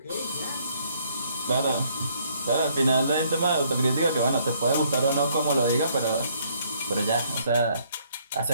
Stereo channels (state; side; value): inverted; both; correlation -0.66